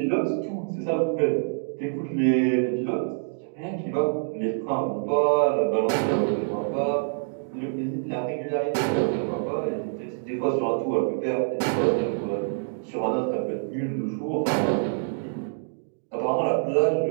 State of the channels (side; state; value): left; silent; digital silence